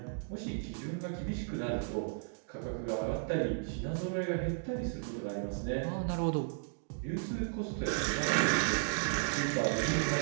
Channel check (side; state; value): left; silent; digital silence